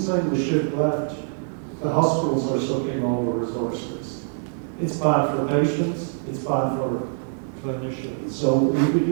the shift left, the hospitals are sucking all the resources. It's bad for patients, it's bad for clinicians. So we could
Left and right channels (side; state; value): left; silent; digital silence